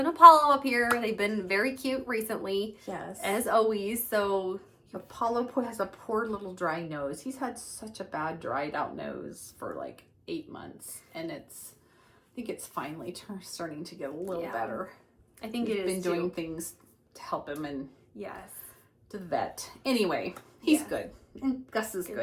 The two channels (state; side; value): identical; both; correlation 1.00